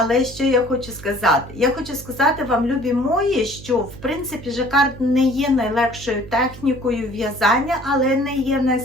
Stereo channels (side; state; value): right; noise; hum, 16 dB below the sound